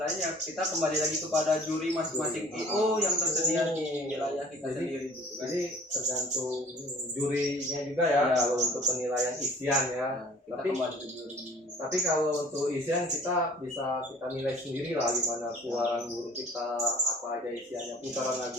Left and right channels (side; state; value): both; normal; correlation 0.50